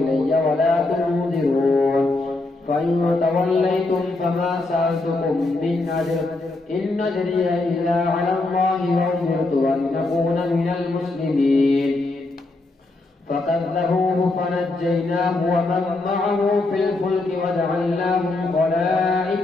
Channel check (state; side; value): quieter; right; 3.1 dB